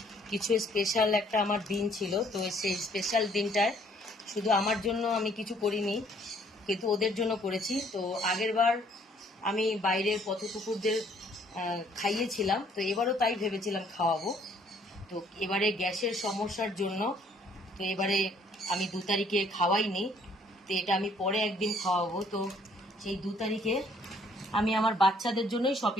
কিছু স্পেশাল একটা আমার দিন ছিল, তো সেই স্পেশাল দিনটায় শুধু আমার জন্য আমি কিছু করিনি, কিন্তু ওদের জন্য করেছি। তো আগের বার আমি বাইরের পথকুকুরদের খাইয়েছিলাম, তো এবারও তাই ভেবেছিলাম খাওয়াবো। তো এবারে গ্যাসের সমস্যার জন্য তো এবারে আমি 2 তারিখে খাওয়াইনি, তো এটা আমি পরে একদিন খাওয়াবো। তো সেই 2 তারিখে আমি আমার বাচ্চাদের জন্যই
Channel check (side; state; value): both; normal; correlation 0.63